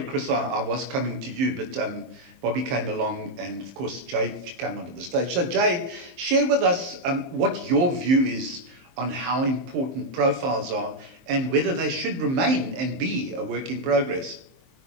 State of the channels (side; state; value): left; late; 23 ms